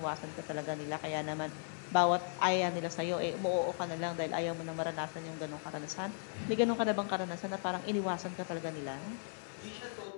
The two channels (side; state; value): right; silent; 53 dB below the other